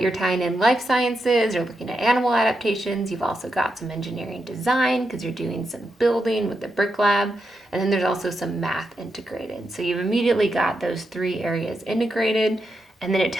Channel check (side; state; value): both; normal; correlation 0.85